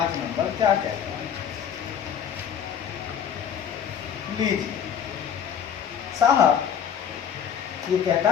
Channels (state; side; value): quieter; right; 8.4 dB